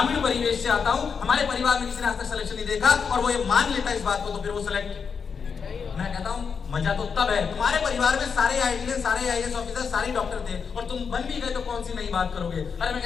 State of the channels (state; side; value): quieter; right; 6.1 dB